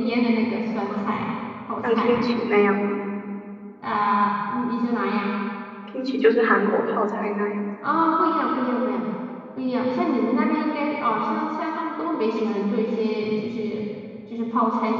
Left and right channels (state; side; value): identical; both; correlation 1.00